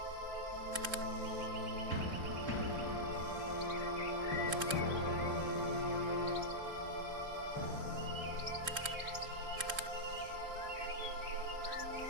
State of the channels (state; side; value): late; left; 3.7 ms